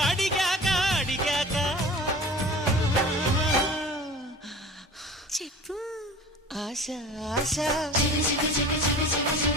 అడిగాక అడిగాక చెప్పు ఆశ ఆశ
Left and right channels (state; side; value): normal; both; correlation 0.40